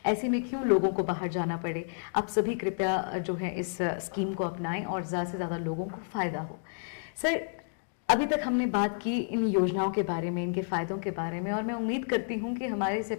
ऐसे में क्यों लोगों को बाहर जाना पड़े। आप सभी कृपया जो है इस स्कीम को अपनाएं और ज़्यादा से ज़्यादा लोगों को फ़ायदा हो। सर, अभी तक हमने बात की इन योजनाओं के बारे में, इनके फ़ायदों के बारे में, और मैं उम्मीद करती हूं कि हमारे इस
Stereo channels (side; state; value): right; silent; digital silence